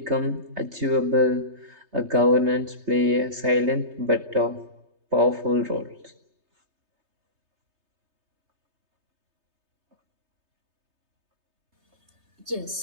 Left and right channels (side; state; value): left; late; 3.3 ms